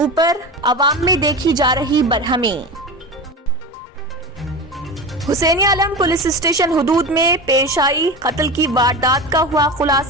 अवाम में देखी जा रही बरहमी। हुसैनी आलम पुलिस स्टेशन हुदूद में पेश आई कत्ल की वारदात का हुआ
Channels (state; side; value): normal; both; correlation 0.26